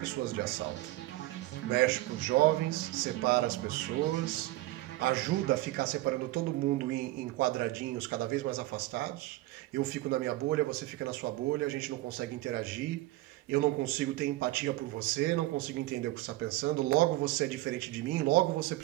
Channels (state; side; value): quieter; left; 17.9 dB